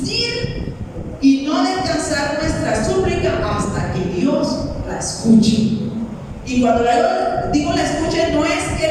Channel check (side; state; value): both; identical; correlation 1.00